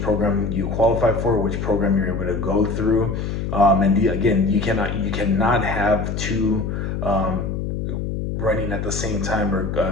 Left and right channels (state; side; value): noise; left; hum, 3 dB below the sound